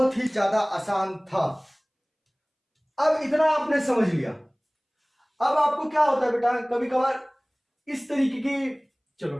ही ज्यादा आसान था। अब इतना आपने समझ लिया। अब आपको क्या होता है बेटा, कभी कभार इस तरीके की, चलो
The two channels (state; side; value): identical; both; correlation 1.00